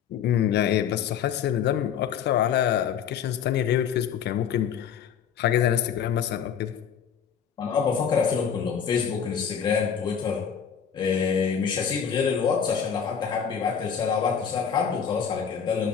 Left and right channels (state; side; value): quieter; right; 7.7 dB